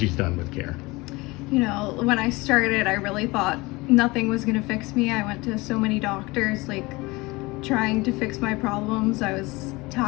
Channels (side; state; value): right; quieter; 22.9 dB